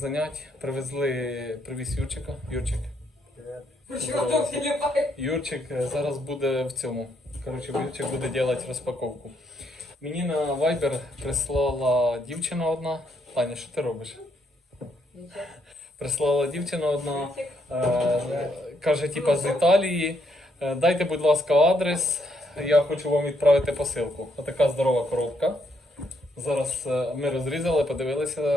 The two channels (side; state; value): both; normal; correlation 0.74